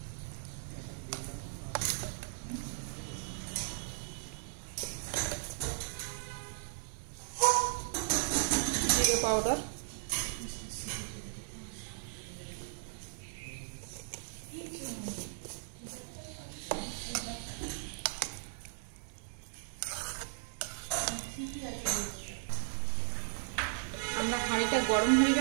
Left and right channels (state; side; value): silent; left; digital silence